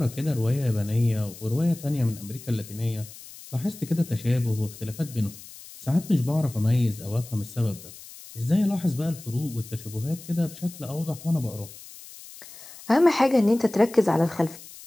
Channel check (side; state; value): left; noise; hiss, 17 dB below the sound